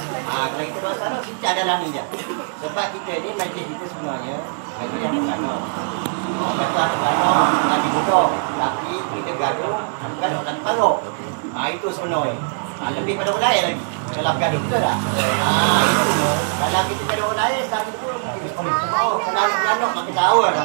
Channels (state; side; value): silent; left; digital silence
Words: Kalau kita masalah kita ada naminya. Sebab kita ni majlis kita sebenarnya majlis yang pertama. Gaduh lagi mudah. Tapi kita gaduh lagi paruh. Itu sebenarnya. Lebih pada orang lain lagi. Kalau gaduh betul tak? Itu. Kalau kita gaduh orang lain, tadi pun kita boleh. Kalau gaduh makin tahu